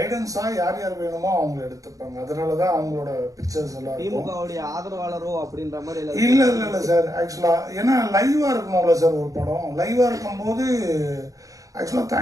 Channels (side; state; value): left; late; 0.17 ms